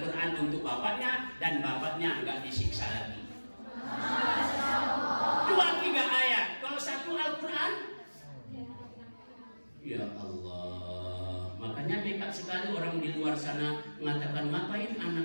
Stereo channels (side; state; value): both; inverted; correlation -1.00